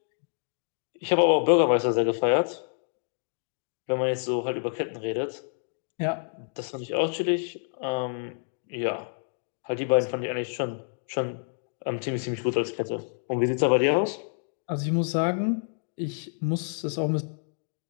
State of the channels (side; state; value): right; silent; digital silence